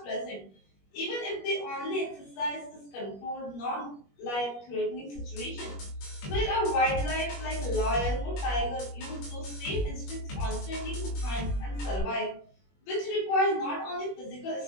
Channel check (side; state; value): right; late; 21 ms